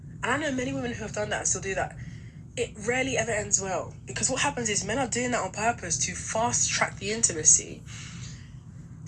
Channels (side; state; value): both; identical; correlation 1.00